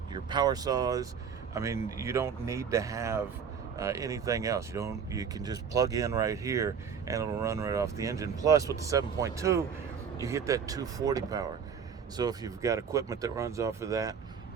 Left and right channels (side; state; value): left; quieter; 6.8 dB